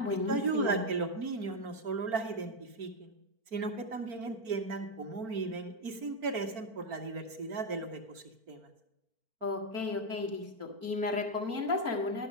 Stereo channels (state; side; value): late; left; 4.4 ms